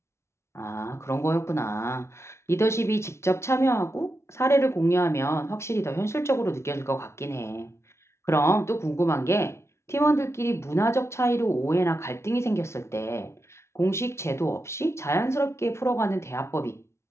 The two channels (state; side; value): late; right; 0.13 ms